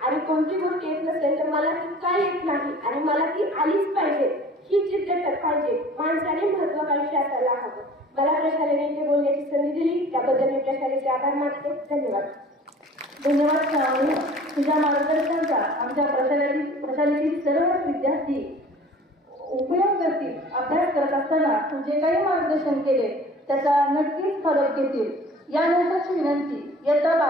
आणि कोणती गोष्ट येत नसेल तर मला ती काय येत नाही आणि मला ती आलीच पाहिजे ही जिद्द पाहिजे. माणसाने महत्वाकांक्षी असायला हवं. मला प्रशालेने इथे बोलण्याची संधी दिली त्याबद्दल मी प्रशालेचे आभार मानते. धन्यवाद. धन्यवाद श्रावणी. तुझ्या मार्गदर्शनाचा आमच्या प्रशालेतील सर्वच विद्यार्थी उपयोग करतील. अभ्यास करत असताना तू जे काही मार्गदर्शन केले त्याचा नक्कीच फरक घेतील. यानंतरची विनंती इयत्ता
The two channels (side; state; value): both; normal; correlation 0.47